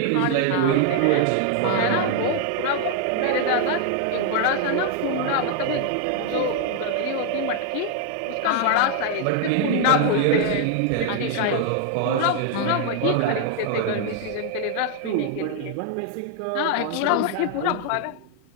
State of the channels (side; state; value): both; different; correlation 0.00